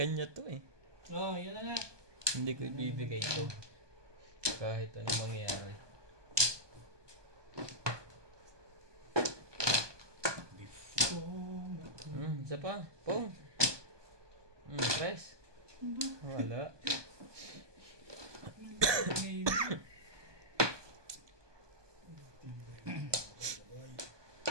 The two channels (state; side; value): late; left; 1.2 ms